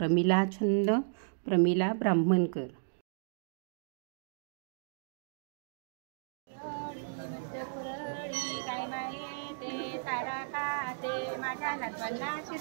छंद प्रमिला ब्राह्मणकर. माझ्या नातवांना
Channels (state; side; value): silent; left; digital silence